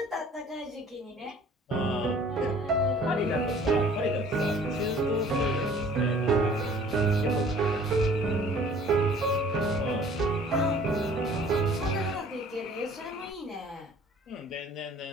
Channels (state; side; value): normal; both; correlation 0.52